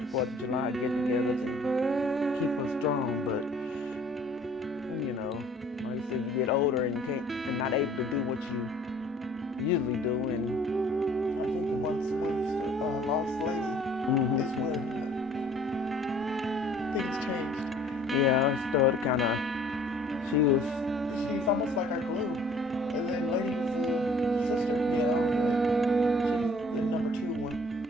4th of July get-togethers and keep us strong. But, like you said, you get older and you can't, and not able to do what you usually do. And I think once we lost Lady is when things changed. Yeah, I started kind of, She's almost like our glue. And then Lady was the sister, she's the number 2 one.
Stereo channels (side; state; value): both; normal; correlation 0.55